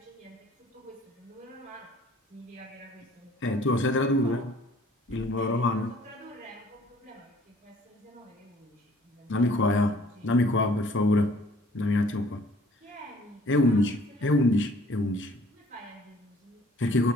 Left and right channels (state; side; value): normal; both; correlation 0.56